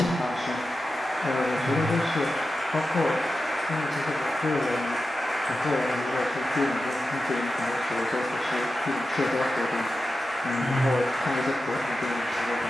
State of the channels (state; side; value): normal; both; correlation 0.92